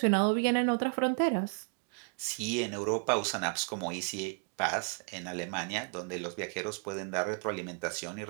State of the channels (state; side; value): quieter; left; 39.0 dB